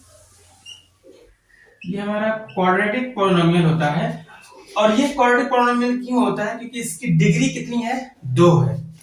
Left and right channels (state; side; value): identical; both; correlation 1.00